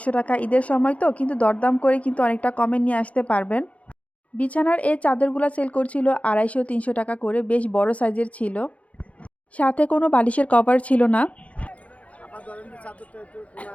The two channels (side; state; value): right; late; 0.066 ms